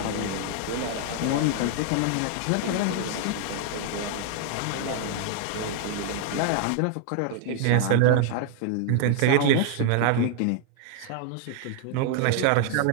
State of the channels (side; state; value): both; different; correlation 0.00